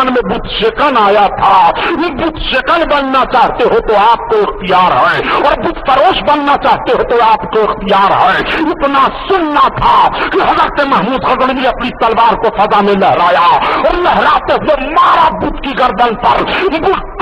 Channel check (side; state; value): both; identical; correlation 1.00